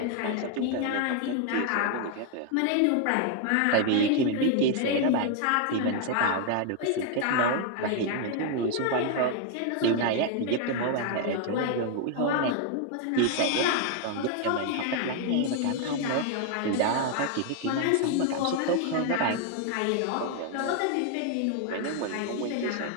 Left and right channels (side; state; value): both; different; correlation 0.00